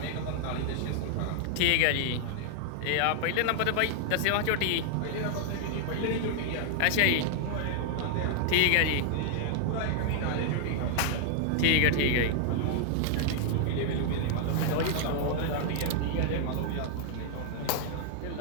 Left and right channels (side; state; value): both; different; correlation 0.00